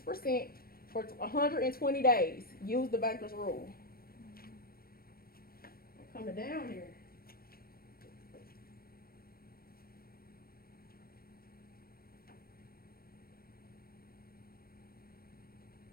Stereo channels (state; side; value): late; right; 0.44 ms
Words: for 120 days. Use the banker's rule. I'm coming down here.